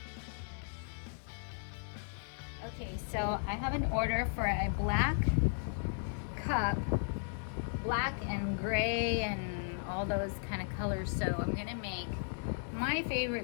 Okay, so I have an order for a black cup, black and gray and all those kind of colors. So I'm gonna make my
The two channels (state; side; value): silent; right; 54 dB below the other